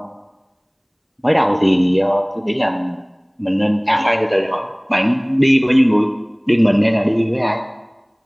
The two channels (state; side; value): identical; both; correlation 1.00